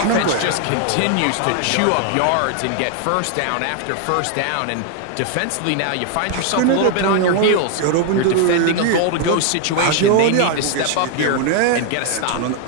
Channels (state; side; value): different; both; correlation 0.00